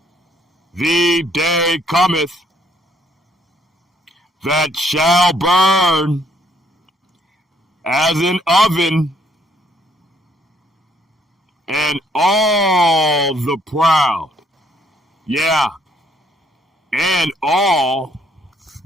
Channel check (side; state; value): both; normal; correlation 0.67